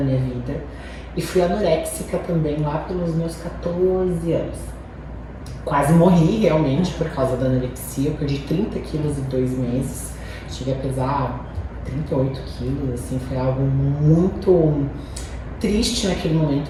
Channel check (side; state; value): both; identical; correlation 1.00